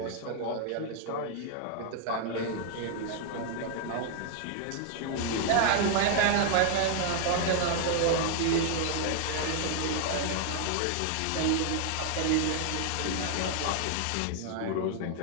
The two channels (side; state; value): both; different; correlation 0.00